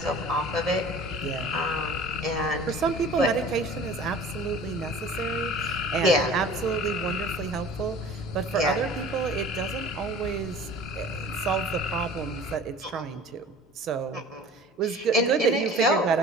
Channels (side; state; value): both; normal; correlation 0.44